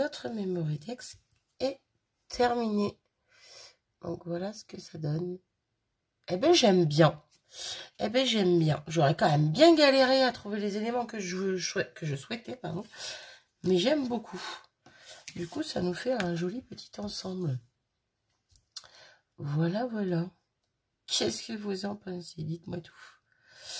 Memory-Tex est terminé. Donc voilà ce que ça donne. Eh ben j'aime bien. Eh ben j'aime bien. J'aurais quand même bien galéré à trouver les éléments que je souhaitais, pardon. Mais j'aime beaucoup. Du coup, ça nous fait un joli petit ensemble. Voilà, voilà. Qu'est-ce que vous en pensez? Dites-moi tout.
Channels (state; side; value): identical; both; correlation 1.00